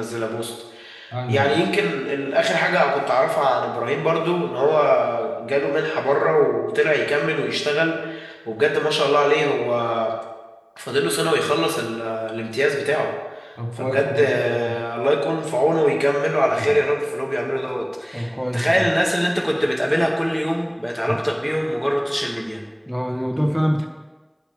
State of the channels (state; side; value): identical; both; correlation 1.00